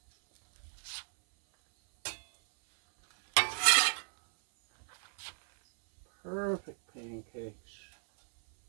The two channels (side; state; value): left; silent; 56 dB below the other